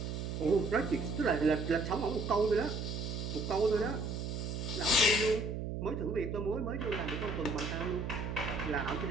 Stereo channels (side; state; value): right; noise; hum, 4 dB below the sound